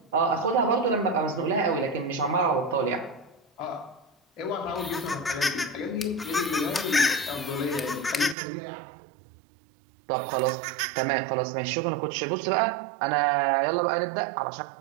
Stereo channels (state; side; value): drops out; left; at 8.3 s